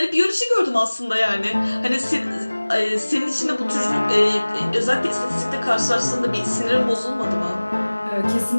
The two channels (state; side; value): inverted; both; correlation -1.00